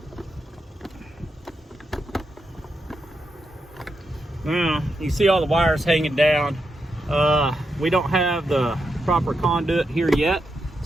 Now, you see all the wires hanging down. We don't have the proper conduit here yet,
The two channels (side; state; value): both; normal; correlation 0.84